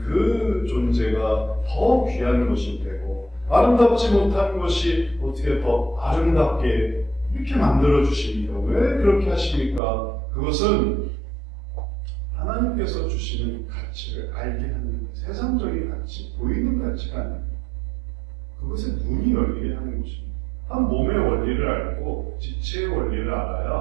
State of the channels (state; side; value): drops out; left; at 9.8 s